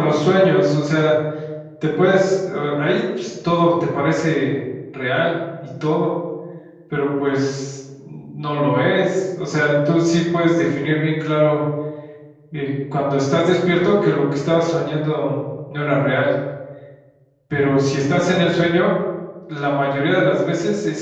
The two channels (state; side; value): identical; both; correlation 1.00